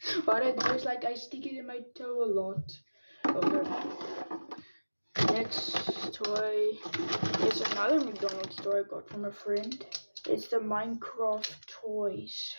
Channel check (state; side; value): inverted; both; correlation -1.00